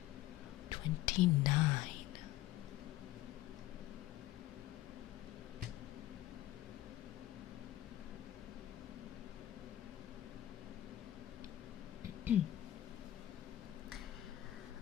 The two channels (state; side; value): quieter; right; 14.6 dB